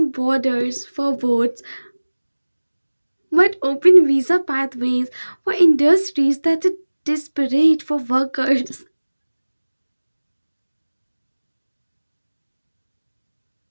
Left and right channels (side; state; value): both; inverted; correlation -1.00